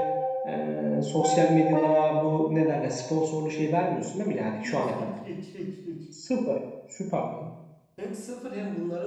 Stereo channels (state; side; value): identical; both; correlation 1.00